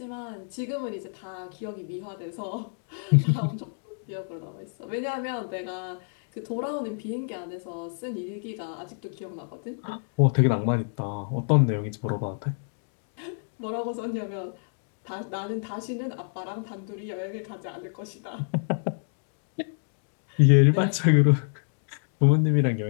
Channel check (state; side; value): silent; right; digital silence